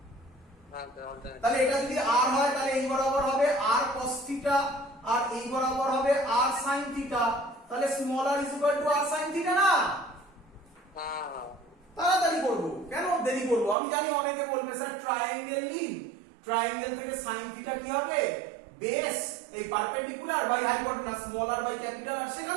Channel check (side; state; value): left; drops out; at 13.8 s